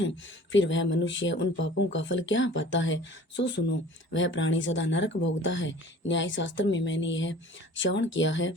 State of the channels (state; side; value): normal; both; correlation 0.46